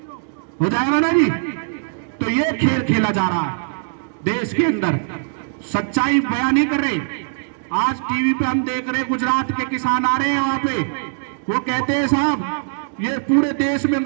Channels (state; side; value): silent; left; digital silence